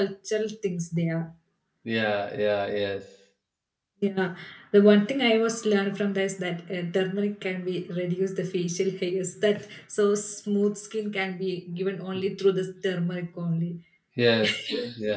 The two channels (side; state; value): both; identical; correlation 1.00